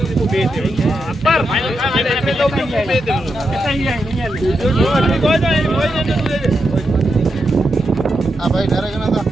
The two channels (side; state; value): both; normal; correlation 0.85